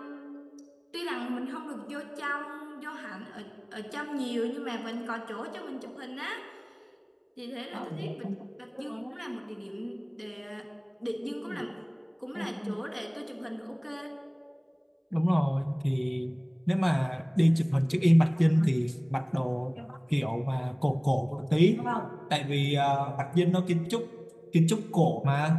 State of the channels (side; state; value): both; identical; correlation 1.00